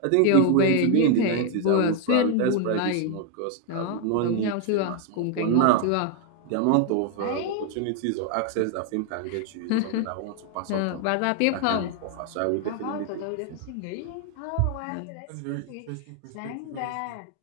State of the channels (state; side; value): different; both; correlation 0.00